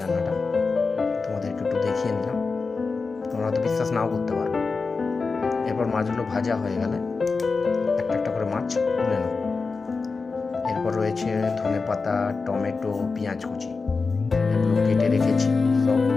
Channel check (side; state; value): right; quieter; 4.4 dB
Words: রান্নাটা, তোমাদেরকে একটু দেখিয়ে নিলাম। তোমরা তো বিশ্বাস নাও করতে পারো। এরপর মাছগুলো ভাজা হয়ে গেলে একটা একটা করে মাছ তুলে নেব। এরপর রয়েছে ধনে পাতা, টমেটো, পেঁয়াজ কুচি, এগুলো কেটে রেখেছি। সব